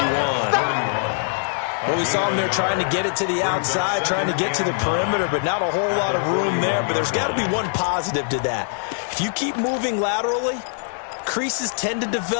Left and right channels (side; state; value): right; silent; 55 dB below the other